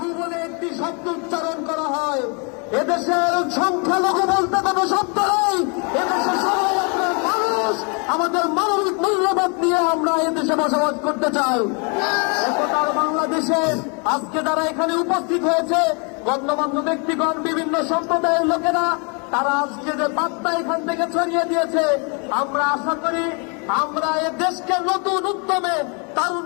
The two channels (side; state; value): right; quieter; 34.9 dB